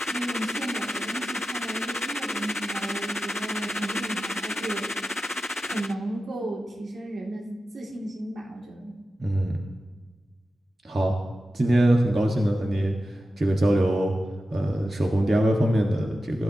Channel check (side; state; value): both; normal; correlation 0.92